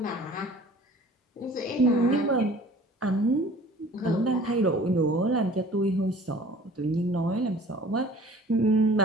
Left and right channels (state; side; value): normal; both; correlation 0.48